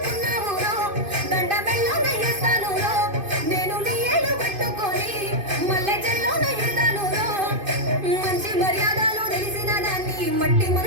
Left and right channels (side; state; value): left; late; 2.5 ms